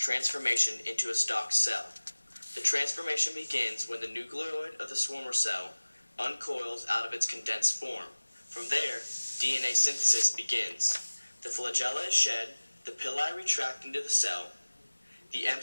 into a stalked cell. The transformation begins when the nucleoid of the swarmer cell uncoils out of its condensed form. From there, DNA synthesis begins. The flagella is shed, the pili retract into the cell, the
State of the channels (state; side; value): inverted; both; correlation -1.00